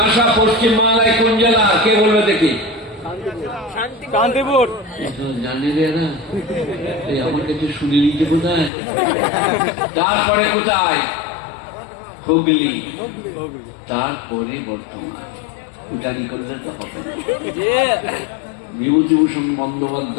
পশ্চিম বাংলায় কোন জেলা? কে বলবে দেখি? শান্তিপুর। জানি রে না, আমার কাছে শুনে নিতে কোথায়? তারপরে কোথায়? হুগলি, তারপরে বর্ধমান। ফুটানি করলে তো হবে। বিভূতিভূষণ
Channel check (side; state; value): right; drops out; at 8.7 s